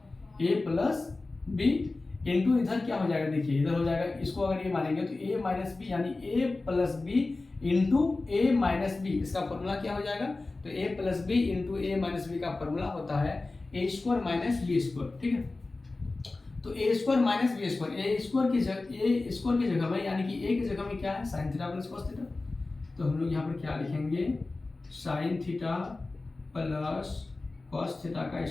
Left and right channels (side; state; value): right; quieter; 3.4 dB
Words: बी इंटू इधर क्या हो जाएगा, देखिए इधर हो जाएगा, इसको अगर ए मानेंगे तो a माइनस बी, यानी a plus B into A minus B, इसका फॉर्मूला क्या हो जाएगा, तो a plus B into A minus B का फॉर्मूला होता है a square minus B square, ठीक है। तो a square minus B square, A square की जगह में, यानी कि a की जगह में क्या है sine theta plus cos theta, तो हम लोग यहाँ पर क्या लिखेंगे sine theta plus cos theta का